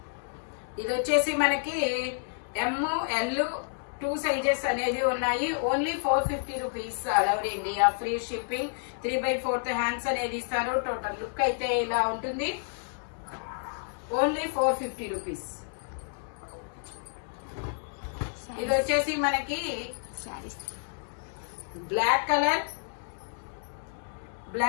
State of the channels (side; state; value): right; silent; digital silence